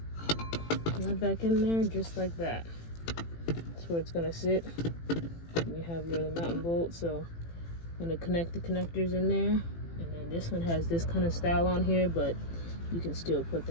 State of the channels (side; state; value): right; late; 18 ms